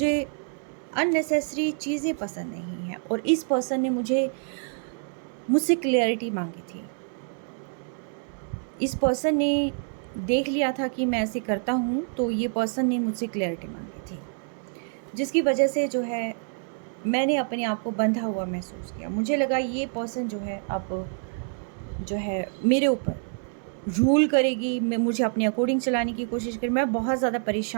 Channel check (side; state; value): left; silent; 57 dB below the other